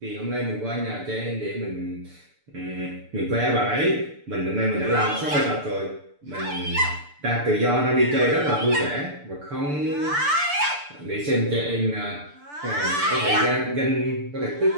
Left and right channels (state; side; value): late; left; 6.8 ms